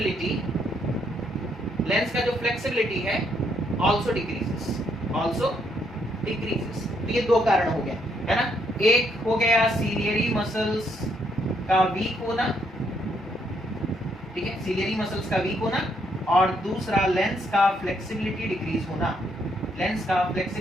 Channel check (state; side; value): normal; both; correlation 0.73